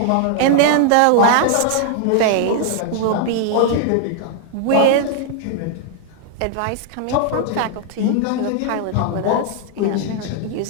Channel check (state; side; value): different; both; correlation 0.00